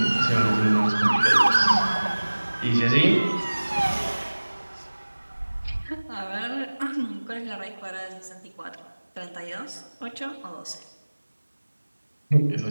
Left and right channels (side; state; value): both; inverted; correlation -1.00